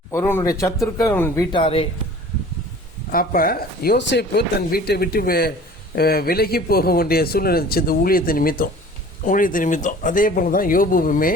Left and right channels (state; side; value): normal; both; correlation 0.46